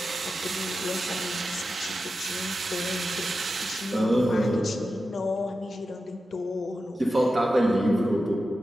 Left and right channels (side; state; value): both; normal; correlation 0.91